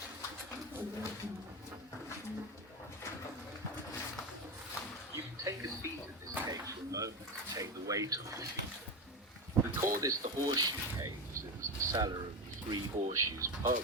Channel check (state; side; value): normal; both; correlation 0.17